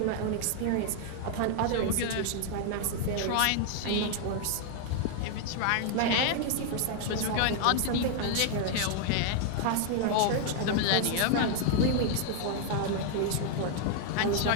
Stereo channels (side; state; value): both; different; correlation 0.00